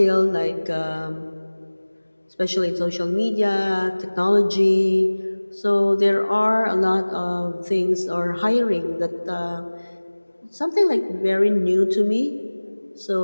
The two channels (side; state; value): both; inverted; correlation -1.00